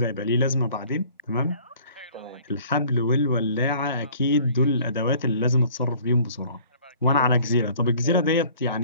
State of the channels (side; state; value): both; inverted; correlation -0.53